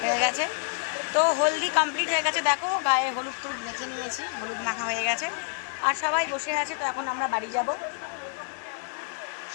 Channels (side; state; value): right; silent; 56 dB below the other